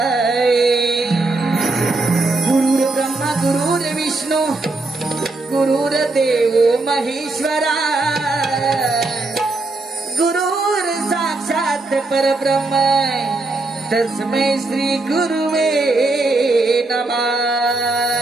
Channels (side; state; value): left; quieter; 3.2 dB